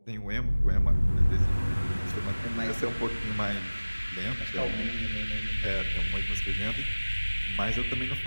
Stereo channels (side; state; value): both; inverted; correlation -1.00